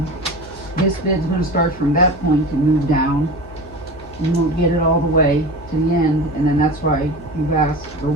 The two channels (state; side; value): noise; left; hum, 19 dB below the sound